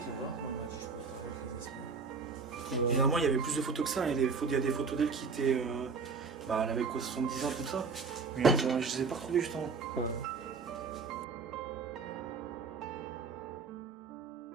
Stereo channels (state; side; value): quieter; left; 5.0 dB